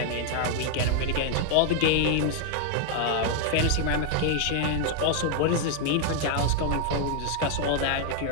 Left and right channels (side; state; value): both; different; correlation 0.00